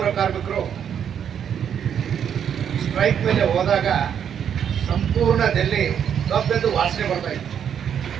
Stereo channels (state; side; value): quieter; left; 8.5 dB